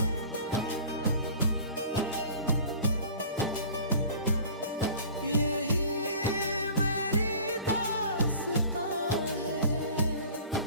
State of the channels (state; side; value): inverted; both; correlation -0.44